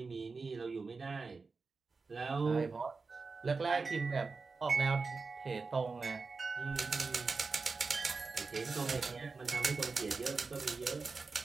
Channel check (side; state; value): left; quieter; 4.3 dB